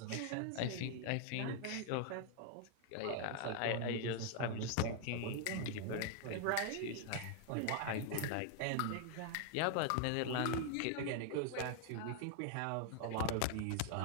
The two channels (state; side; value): different; both; correlation 0.00